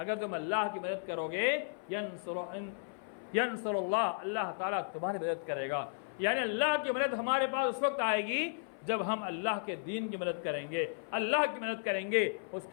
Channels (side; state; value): right; silent; 55 dB below the other